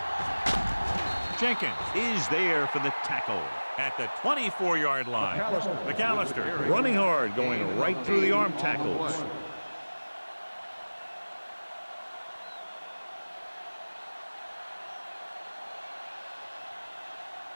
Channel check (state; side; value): inverted; both; correlation -1.00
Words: Jenkins is there for the tackle at the 24-yard line. McAllister running hard, going right through the arm tackles.